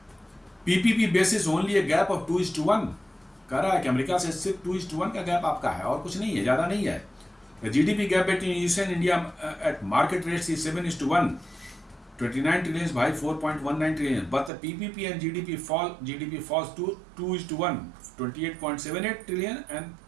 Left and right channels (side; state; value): left; drops out; at 14.5 s